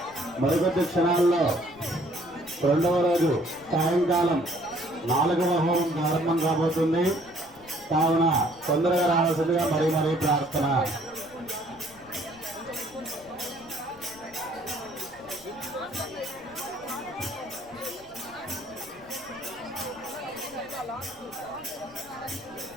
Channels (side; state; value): left; noise; rumble, 25 dB below the sound